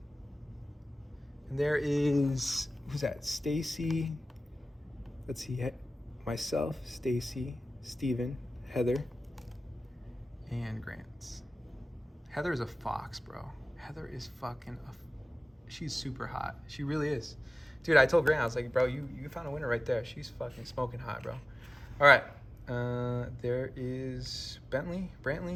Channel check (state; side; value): normal; both; correlation 0.97